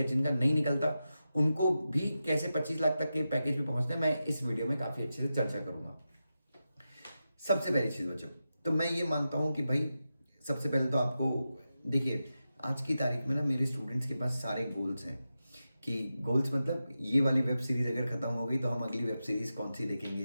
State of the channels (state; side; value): inverted; both; correlation -0.91